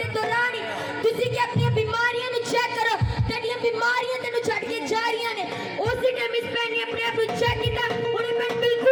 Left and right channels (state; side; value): identical; both; correlation 1.00